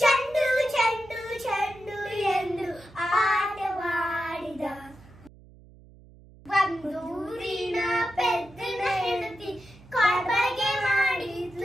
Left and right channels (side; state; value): right; noise; hum, 23 dB below the sound